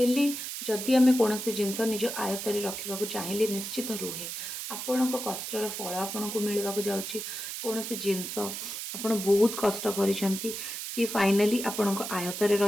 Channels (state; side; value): noise; right; hiss, 6 dB below the sound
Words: जदि आम कौन जिनस निज आयतर रखा चाहिए निश्चित रुहे। आपण कष्टर फल आपन को मिलवा जाऊँगी। कौन जिनस आपड़ बहुत कष्ट करी सी फाइनाली आपण आयतर